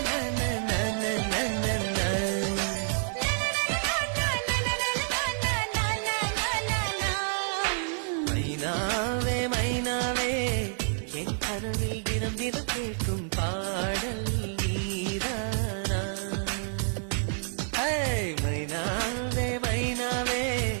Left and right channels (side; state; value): left; silent; digital silence